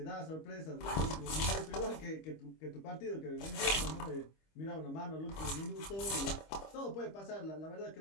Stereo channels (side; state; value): right; late; 25 ms